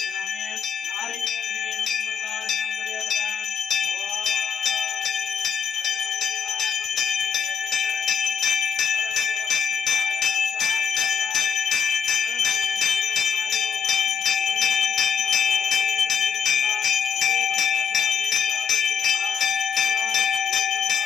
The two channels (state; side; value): quieter; right; 6.7 dB